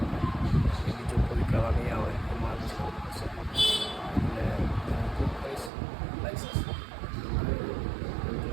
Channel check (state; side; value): drops out; left; at 5.7 s